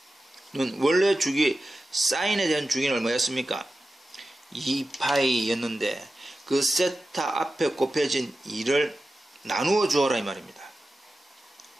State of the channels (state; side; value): normal; both; correlation 0.93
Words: 원래 주기 사인에 대한 주기는 얼마였습니까? 2파이였는데 그 세타 앞에 곱해진 2를 나누어 주어라 이 말입니다.